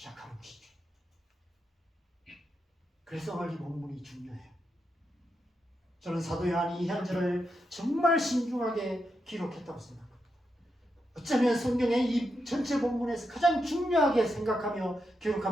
것이죠. 그래서 오늘 이 본문이 중요해요. 저는 사도 요한이 이 현절을 정말 신중하게 기록했다고 생각합니다. 어쩌면 성경의 이 전체 본문에서 가장 중요하게 생각하며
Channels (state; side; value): normal; both; correlation 0.85